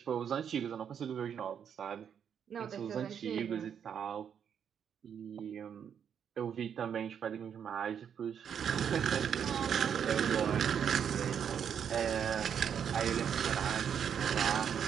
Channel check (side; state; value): left; quieter; 8.1 dB